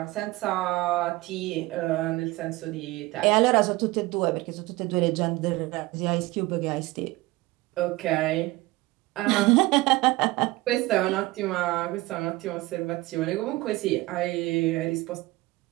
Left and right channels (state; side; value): quieter; left; 20.2 dB